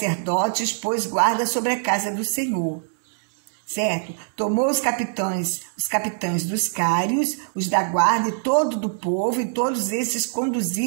pôs guarda sobre a casa do Senhor. Certo? Tomou os capitães dos cários, os da guarda e todo do povo, e todos esses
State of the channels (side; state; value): left; silent; digital silence